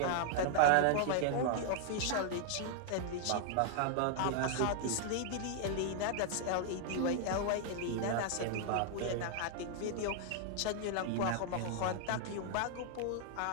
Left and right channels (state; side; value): different; both; correlation 0.00